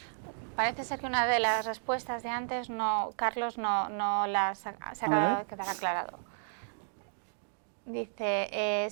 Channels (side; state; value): left; silent; digital silence